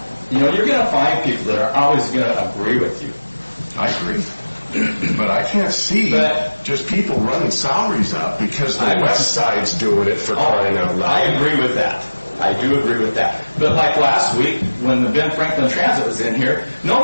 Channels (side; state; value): both; inverted; correlation -1.00